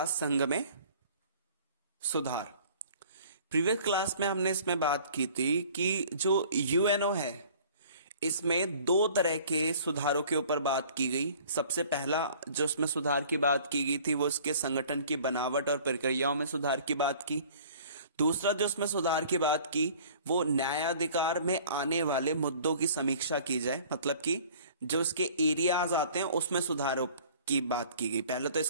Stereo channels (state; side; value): inverted; both; correlation -0.50